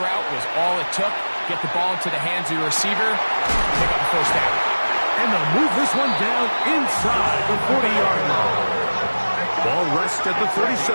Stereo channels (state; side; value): inverted; both; correlation -1.00